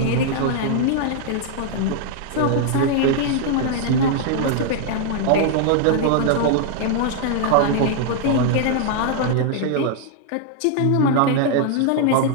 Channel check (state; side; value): different; both; correlation 0.00